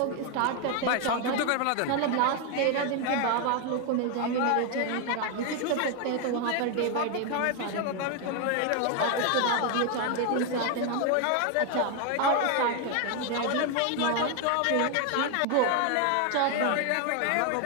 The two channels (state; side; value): different; both; correlation 0.01